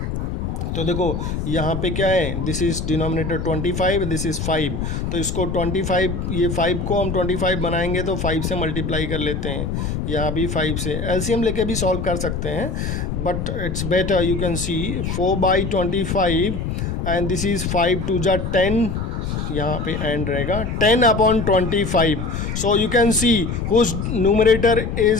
तो देखो यहाँ पे क्या है, this is denominator 25, this is 5. तो इसको 25, ये 5 को हम 25 बनाएंगे तो 5 से मल्टीप्लाई कर लेते हैं. यहाँ भी 5 से एलसीएम लेके भी सॉल्व कर सकते हैं, but it's better you can see 4/25 and this is 5 2 जा 10. यहाँ पे एंड रहेगा 10/25. So you can see whose numerator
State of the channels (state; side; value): noise; left; rumble, 3 dB below the sound